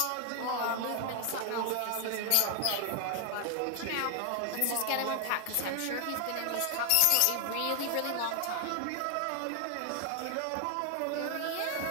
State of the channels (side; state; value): both; different; correlation 0.00